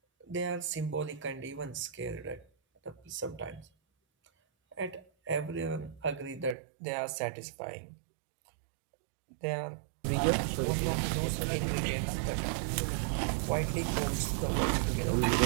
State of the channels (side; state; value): left; drops out; at 6.6 s